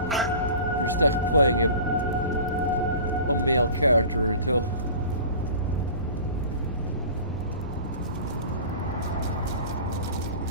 you're stuck playing a male character until...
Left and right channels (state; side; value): inverted; both; correlation -0.40